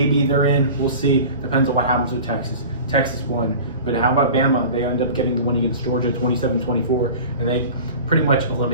they're in. We'll see. Depends on what happens with Texas. Texas won. But how about Bama? They end up getting the win against Georgia 27-24, and they pretty much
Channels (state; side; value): inverted; both; correlation -0.38